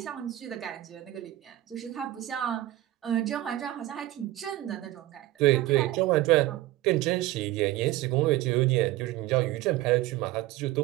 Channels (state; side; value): quieter; left; 15.9 dB